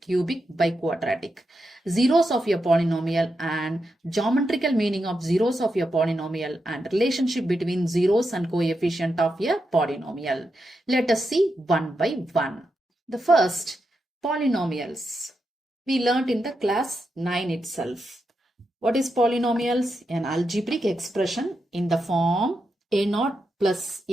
cubic, biquadratic, zeros of your polynomial and geometrical meaning of zeros of your polynomial and relationship between zeros and coefficient of your polynomial. Let us see one by one. The first, polynomials. We learnt in the class 9 itself. What is polynomials? An algebraic expression in the form a0 plus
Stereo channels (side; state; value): both; normal; correlation 0.86